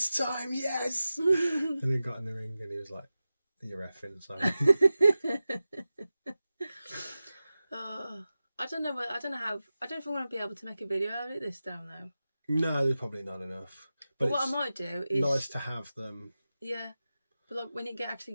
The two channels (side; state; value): both; inverted; correlation -0.94